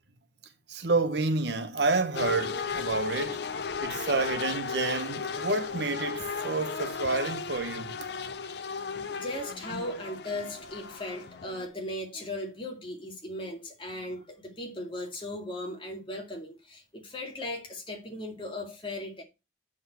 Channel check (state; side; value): normal; both; correlation -0.15